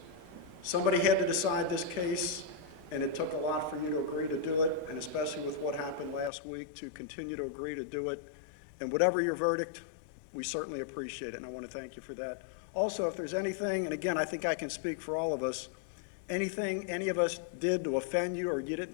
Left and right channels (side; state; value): right; drops out; at 6.3 s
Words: Somebody had to decide this case, and it took a lot for you to agree to do it, and especially with what happened last week, to continue to agree to do it. And whatever your verdict, we certainly appreciate it, and I want to thank you for that. Also, if there's anything, and again, I think I can speak for all of us, anything any of us did to offend you or you